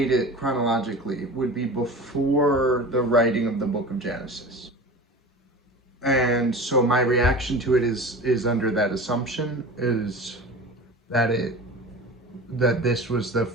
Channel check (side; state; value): both; normal; correlation 0.34